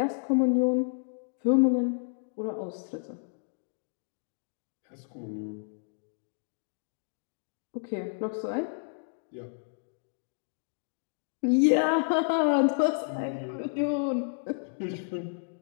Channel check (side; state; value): right; silent; digital silence